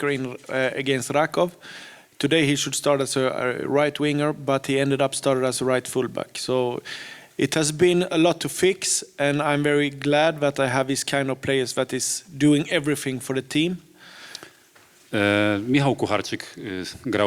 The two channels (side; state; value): both; identical; correlation 1.00